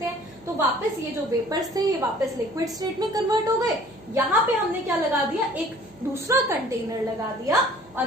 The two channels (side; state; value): right; noise; hum, 29 dB below the sound